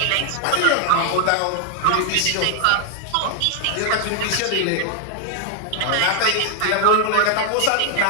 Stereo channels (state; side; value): different; both; correlation 0.00